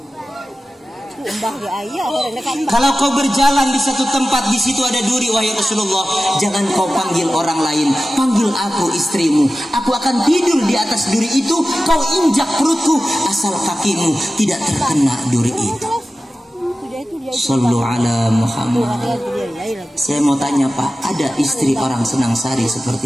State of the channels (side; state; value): both; normal; correlation 0.95